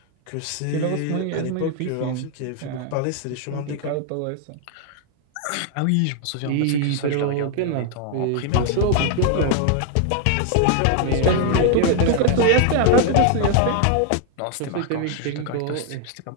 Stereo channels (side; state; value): both; different; correlation 0.00